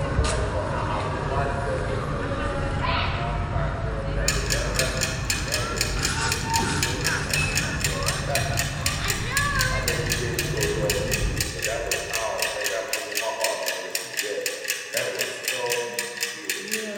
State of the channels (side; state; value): both; identical; correlation 1.00